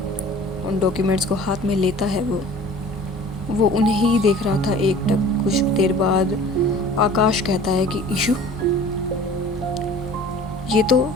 उन डॉक्यूमेंट्स को हाथ में लेता है। वो उन्हें ही देख रहा था एकटक। कुछ देर बाद आकाश कहता है कि ईशु, ये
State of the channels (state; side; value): normal; both; correlation 0.46